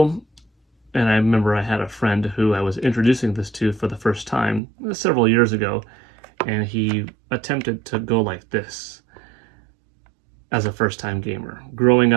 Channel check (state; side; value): drops out; left; at 4.6 s